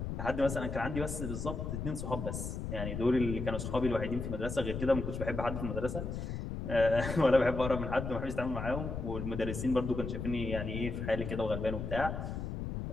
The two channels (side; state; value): left; noise; rumble, 4 dB below the sound